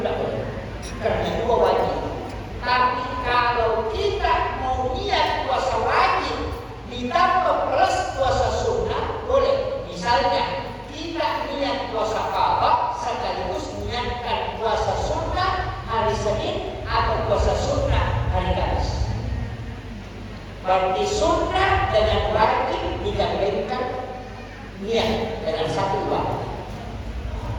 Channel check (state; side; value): identical; both; correlation 1.00